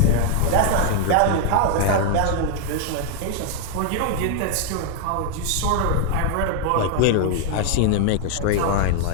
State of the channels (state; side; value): different; both; correlation 0.00